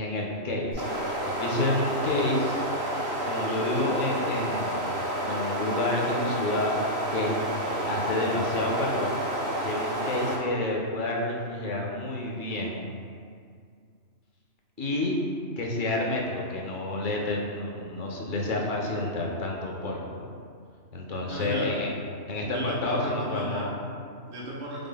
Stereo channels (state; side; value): late; left; 3.0 ms